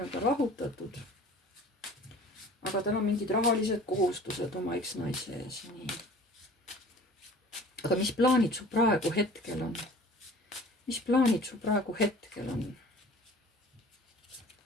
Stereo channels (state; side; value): normal; both; correlation 0.46